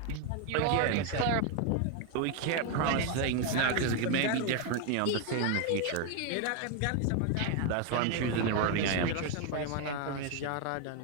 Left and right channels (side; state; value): both; different; correlation 0.01